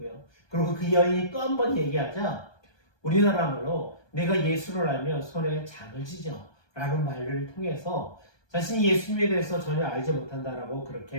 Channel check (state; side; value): late; right; 1.2 ms